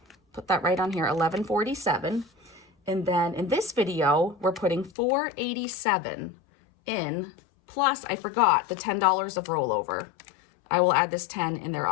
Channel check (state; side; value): drops out; right; at 4.9 s